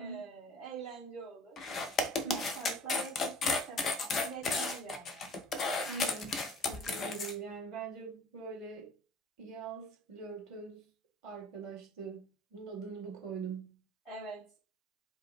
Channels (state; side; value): normal; both; correlation 0.46